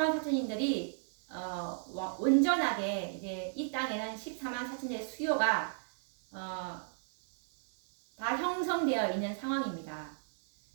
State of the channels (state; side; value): silent; left; 55 dB below the other